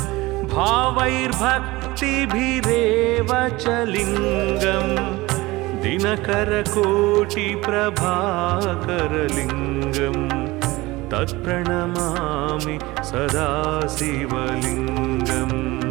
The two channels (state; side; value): quieter; left; 20.7 dB